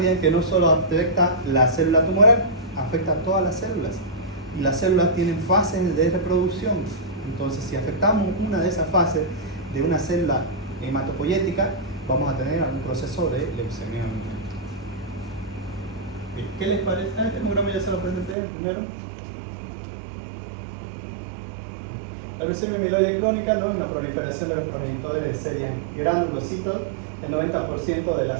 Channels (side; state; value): left; drops out; at 18.4 s